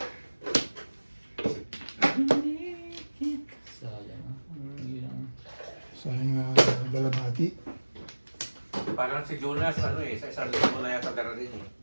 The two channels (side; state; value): both; inverted; correlation -1.00